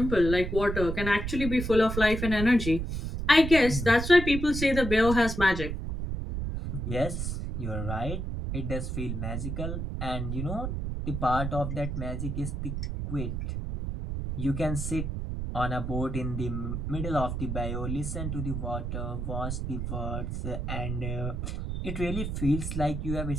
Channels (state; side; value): noise; right; rumble, 3 dB below the sound